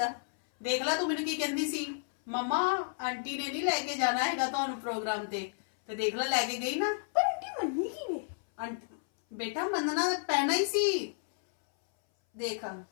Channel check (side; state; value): right; silent; 57 dB below the other